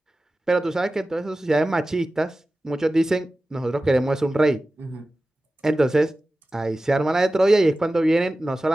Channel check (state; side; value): normal; both; correlation 0.96